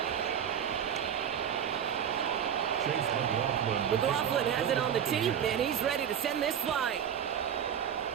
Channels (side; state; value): left; quieter; 8.7 dB